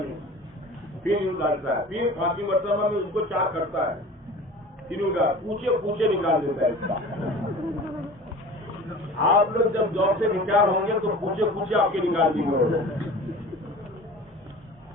پھر یوں ڈالتا ہے، پھر پانچویں مرتبہ میں اس کو چار کرتا ہے، پھر یوں پوچھے نکال دیتا ہے اس کا۔ آپ لوگ جب جاب سے ریٹائر ہوں گے تو پوچھے آپ کے نکال دیں گے،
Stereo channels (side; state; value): both; normal; correlation 0.40